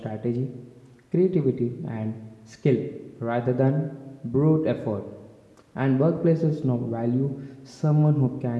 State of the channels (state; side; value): identical; both; correlation 1.00